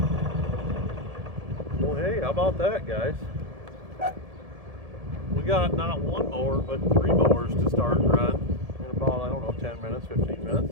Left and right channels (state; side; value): late; left; 1.7 ms